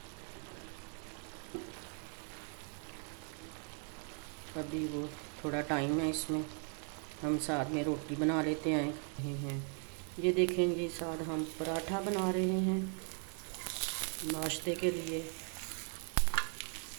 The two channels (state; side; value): quieter; left; 38.9 dB